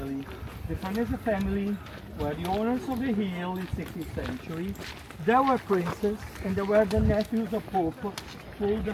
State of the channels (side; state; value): both; identical; correlation 1.00